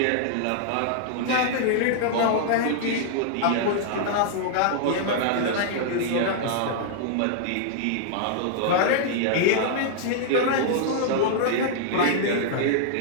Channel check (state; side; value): different; both; correlation -0.01